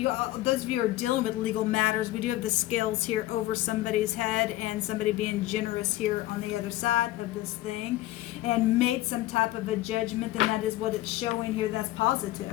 of you are dealing with legal matters, we do have the scales here over somebody's head and somebody being generous here on the other side of this thing and made some type of a judgment, and that is what it's showing here. That's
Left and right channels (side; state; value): right; quieter; 16.5 dB